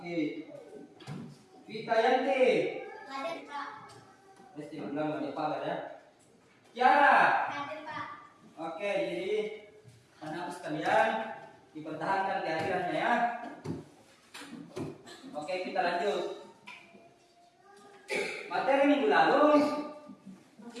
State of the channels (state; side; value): identical; both; correlation 1.00